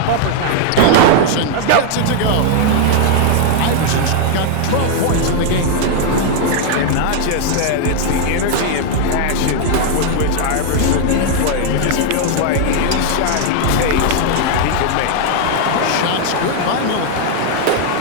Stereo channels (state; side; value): different; both; correlation 0.00